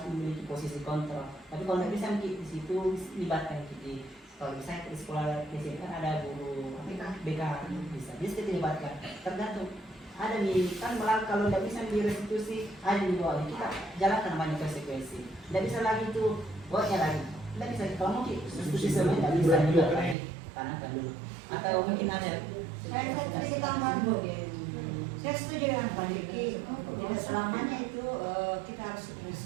memiliki posisi kontrol. Tapi kalau tidak bisa di situ libatkan kita. Kalau misalnya di sekolah SMP kan ada guru BK bisa kita libatkan. Tergantung ada nih kan kalau tidak bisa di restitusi ada di bawah kita jalankan namanya konsekuensi. Tidak bisa lagi itu buatnya lagi. Tidak bisa kalau mungkin restitusi semuanya tidak bisa juga tapi tanamkan dulu. Atau mungkin ada. Saya sedikit tambahan Bu. Saya setuju dengan Pak Diki. Tidak selamanya itu kita harus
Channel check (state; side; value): drops out; left; at 20.2 s